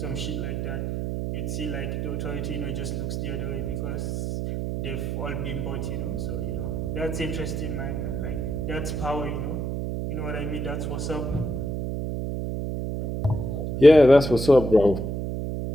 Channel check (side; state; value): right; noise; hum, 2 dB below the sound